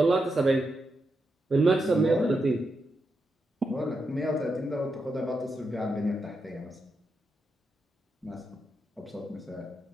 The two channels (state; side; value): normal; both; correlation 0.85